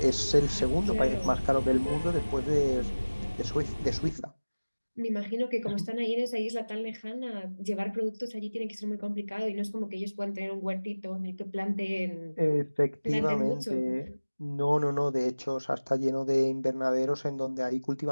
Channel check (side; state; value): both; inverted; correlation -1.00